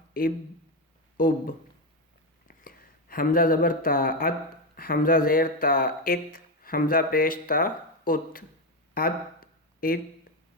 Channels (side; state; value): both; normal; correlation 0.11